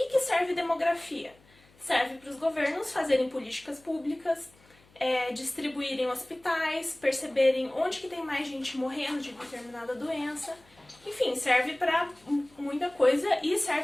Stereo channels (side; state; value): left; noise; hum, 29 dB below the sound